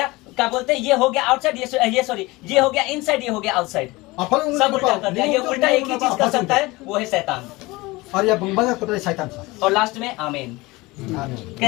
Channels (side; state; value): right; quieter; 22.0 dB